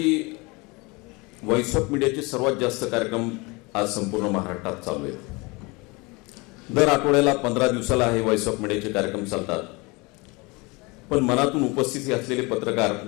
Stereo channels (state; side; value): quieter; right; 26.1 dB